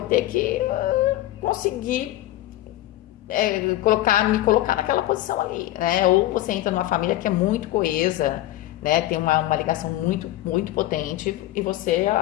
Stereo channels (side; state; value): right; quieter; 15.2 dB